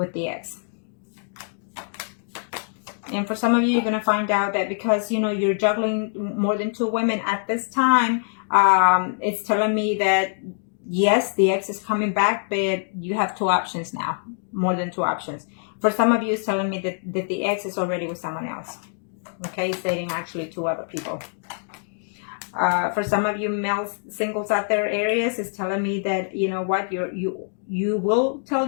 the ex. And for some of you, you're going to find out that because, you know, you're juggling more than 2 women at this time, it's telling me that, yes, the ex is coming back, but you have 2 options now, more than 2 options. For some of you, it's telling me that the ex is already with someone else. Okay, it's dating actually 2 other people. For some of you male singles out there, Aries, is telling me that, you know what, you will tell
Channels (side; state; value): right; silent; digital silence